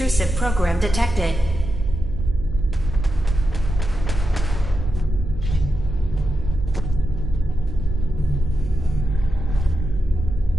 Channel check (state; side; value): noise; right; hum, 7 dB below the sound